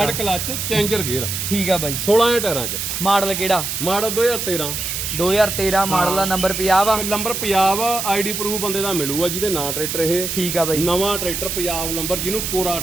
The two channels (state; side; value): noise; right; hiss, 3 dB below the sound